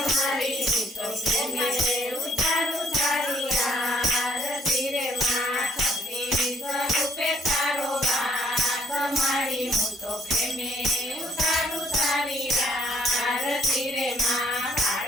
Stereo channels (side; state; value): both; normal; correlation 0.64